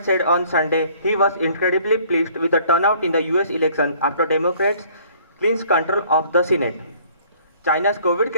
said on Sunday he was incredibly pleased with the turnout in the US election after Democrats clinched control of the Senate. China's COVID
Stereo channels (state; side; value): inverted; both; correlation -0.57